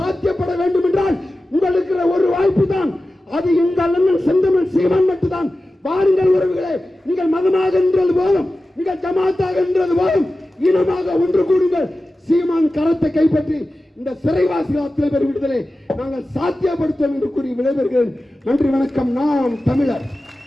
வேண்டும் என்றால் உங்களுக்கு ஒரு வாய்ப்பு தான். அது எங்கள் அண்ணன் செந்தமிழ் சீமான் மட்டும்தான். வாருங்கள் உறவுகளே, நீங்கள் மதமாக என்றது போதும், நீங்கள் ஜமாத்தாக என்றது போதும், இனமாக ஒன்று கூடுங்கள். சீமான் கரத்தை கைப்பற்றி இந்த சிறைவாசிகள் அத்தனை பேர் விடுதலை நாங்கள் சாத்தியப்படுத்துவோம் என்று கூறி விடைபெறுகிறேன். நன்றி, வணக்கம். நாம் தமிழர்.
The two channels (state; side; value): normal; both; correlation 0.94